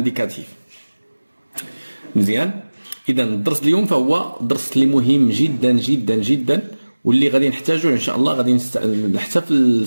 مزيان، إذا الدرس اليوم فهو درس اللي مهم جدا جدا جدا، واللي غادي نحتاجوه ان شاء الله غادي حتى في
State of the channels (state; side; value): inverted; both; correlation -1.00